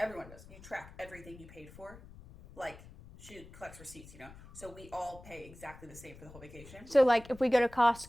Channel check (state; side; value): noise; left; rumble, 18 dB below the sound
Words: does, you track everything you paid for. Like, she collects receipts, so we all pay exactly the same for the whole vacation. So, like, if we go to